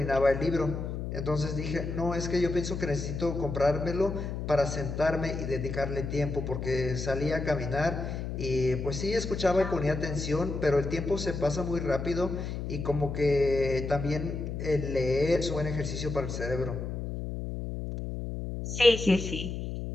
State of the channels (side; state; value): left; noise; hum, 5 dB below the sound